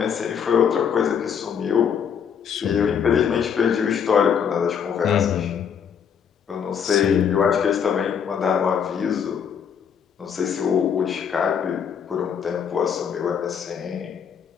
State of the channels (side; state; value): right; quieter; 7.6 dB